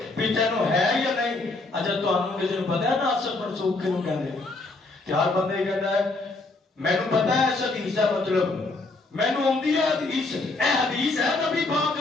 بھی تینوں ہے یا نہیں۔ اچھا تانوں کسی نوں پتہ ہے ناسخ منسوخ کیوں کہندے؟ تے ہر بندے کہندا ہے مینوں پتہ ہے اس حدیث دا مطلب، مینوں آندی ہے حدیث، اے حدیث ہے نبی پاک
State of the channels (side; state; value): right; quieter; 3.3 dB